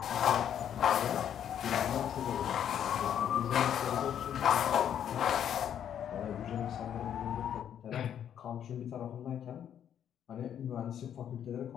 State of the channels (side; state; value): right; quieter; 9.5 dB